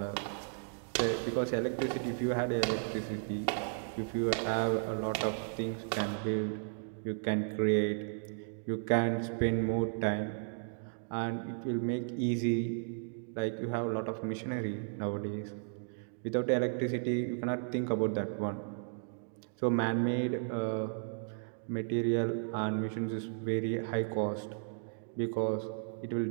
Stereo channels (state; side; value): silent; left; digital silence